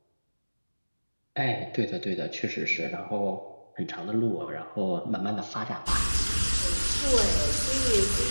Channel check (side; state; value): both; inverted; correlation -1.00